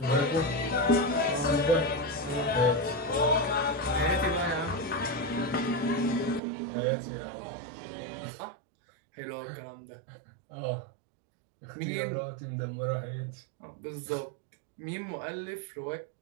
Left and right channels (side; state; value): left; drops out; at 6.4 s